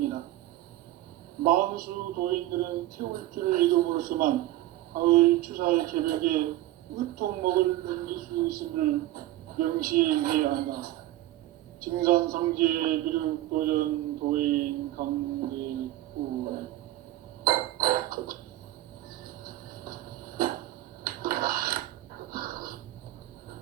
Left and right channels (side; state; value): left; quieter; 15.4 dB